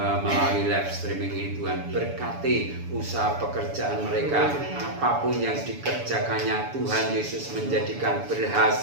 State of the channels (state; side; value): late; left; 7.0 ms